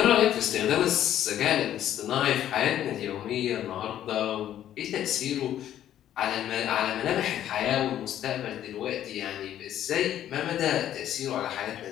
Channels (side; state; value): right; quieter; 11.5 dB